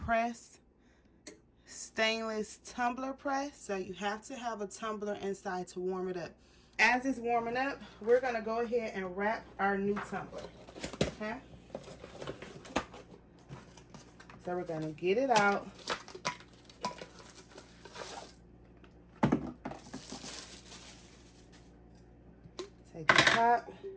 stainless tumbler press. So you have to have a tumbler inside to warm it up. As it's warming up, we're going to go ahead and wrap our new tumbler, okay? So we're going to get it out. Take the top,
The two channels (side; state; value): both; identical; correlation 1.00